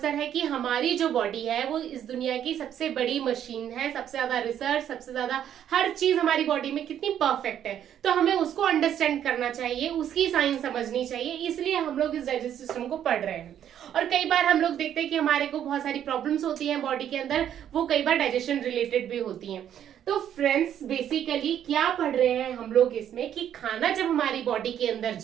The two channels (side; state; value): left; quieter; 10.0 dB